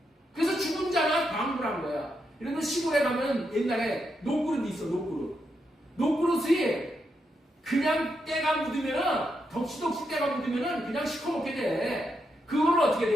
그래서 죽은 자가 방불한 거야. 이런 거 시골에 가면 옛날에 녹그릇이 있어. 녹그릇이 그냥 때가 묻으면은 덕시덕시 때가 묻으면은 그냥 시커멓게 돼. 그걸 어떻게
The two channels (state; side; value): normal; both; correlation 0.82